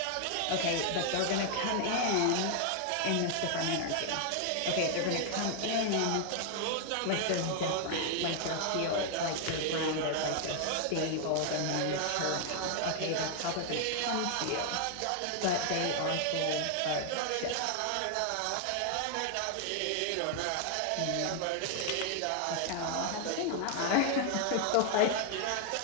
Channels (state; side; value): different; both; correlation 0.00